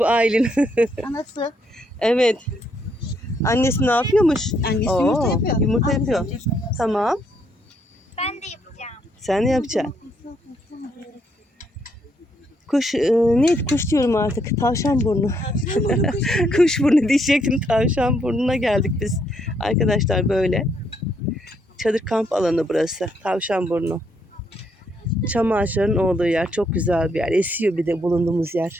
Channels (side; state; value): both; normal; correlation 0.73